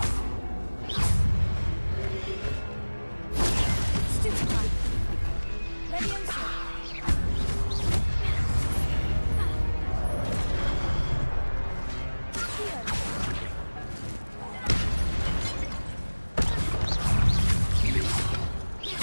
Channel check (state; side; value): inverted; both; correlation -1.00